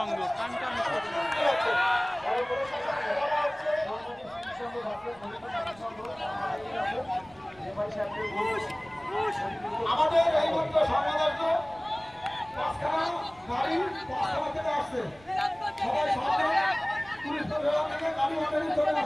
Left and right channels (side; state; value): right; noise; rumble, 25 dB below the sound